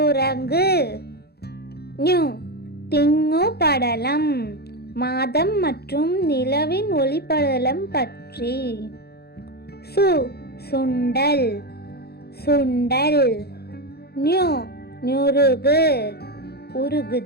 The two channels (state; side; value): late; right; 0.46 ms